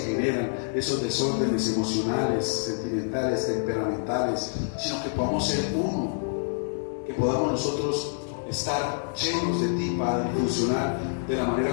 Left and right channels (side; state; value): right; silent; 60 dB below the other